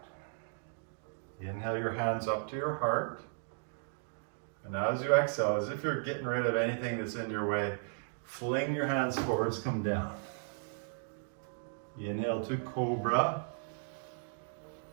Inhale your hands up to your heart. And as you exhale, as if you're getting rid of anything that's in your way, fling your hands forwards, come down. Inhale to Cobra.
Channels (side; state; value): left; silent; digital silence